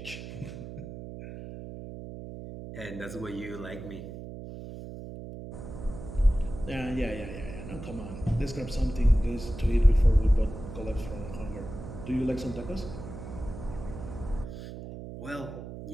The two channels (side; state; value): right; noise; hum, 10 dB below the sound